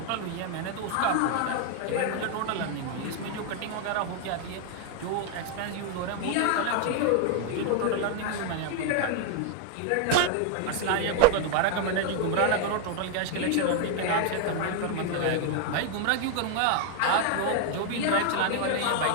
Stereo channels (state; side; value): different; both; correlation 0.00